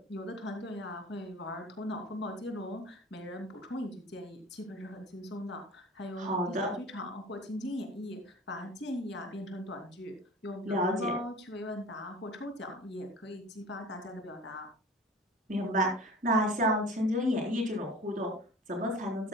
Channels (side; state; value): both; normal; correlation 0.41